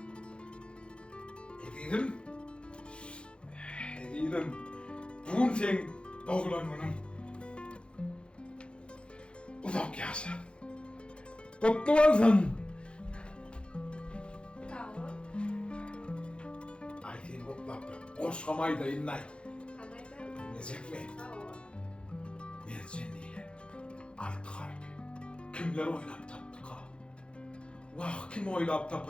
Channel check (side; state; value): right; late; 0.056 ms